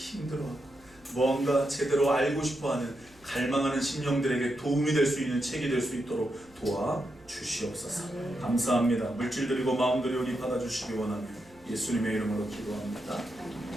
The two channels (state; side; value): noise; right; hum, 27 dB below the sound